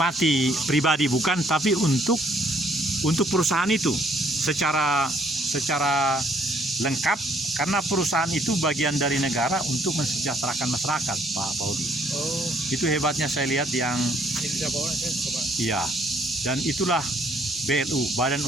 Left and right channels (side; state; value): both; normal; correlation 0.65